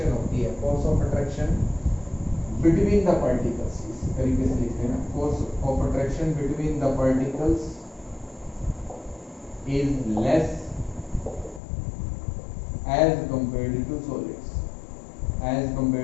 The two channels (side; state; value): right; drops out; at 11.6 s